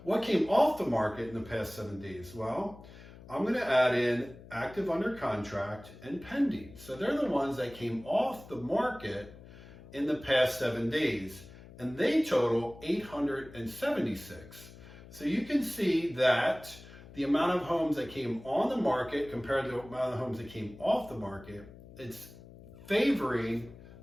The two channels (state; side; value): noise; left; hum, 18 dB below the sound